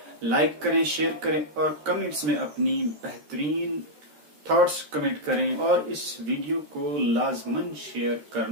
लाइक करें, शेयर करें और कमेंट्स में अपनी बेहतरीन थॉट्स कमेंट करें। और इस वीडियो को लाजमन शेयर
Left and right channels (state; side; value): late; left; 13 ms